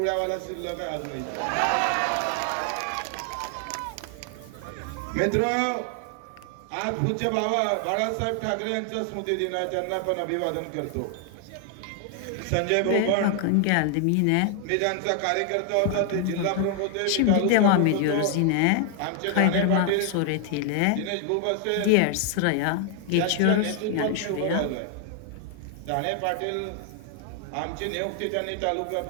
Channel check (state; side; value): different; both; correlation 0.00